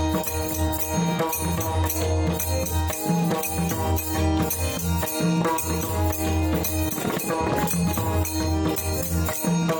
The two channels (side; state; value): both; identical; correlation 1.00